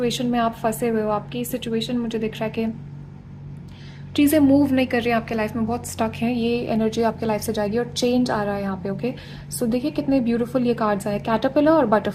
में आप फंसे हुए हो, आपकी सिचुएशन मुझे दिख रहा है कि चीज़ें मूव नहीं कर रही हैं आपके लाइफ में, बहुत स्टक हैं, ये एनर्जी आपके लाइफ से जाएगी और चेंज आ रहा है यहाँ पे। ओके, सो देखिए कितने ब्यूटीफुल ये कार्ड्स आए, कैटरपिलर और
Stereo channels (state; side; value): identical; both; correlation 1.00